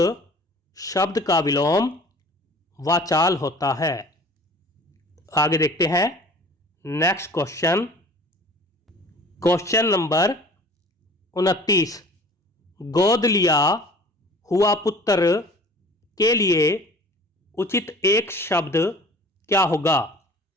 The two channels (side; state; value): both; normal; correlation 0.46